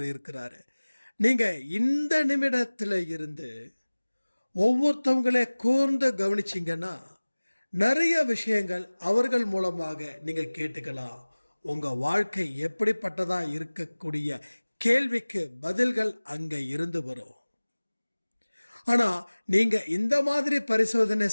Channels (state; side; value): inverted; both; correlation -1.00